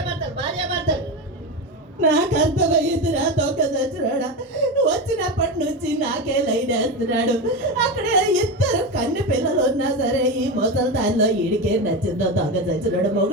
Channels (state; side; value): normal; both; correlation 0.18